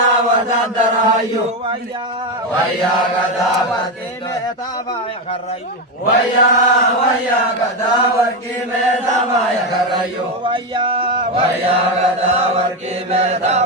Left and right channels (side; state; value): both; normal; correlation 0.11